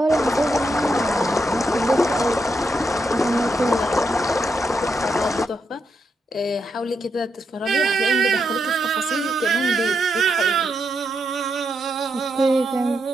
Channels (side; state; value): both; normal; correlation 0.82